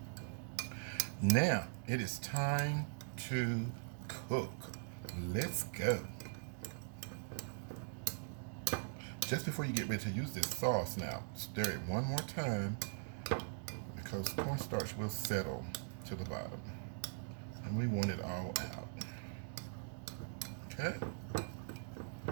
Now, it is time to cook. Let's go. Just before you get ready to use this sauce now, stir it one more time because cornstarch will settle to the bottom. And we want it all out. Okay?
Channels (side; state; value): left; silent; digital silence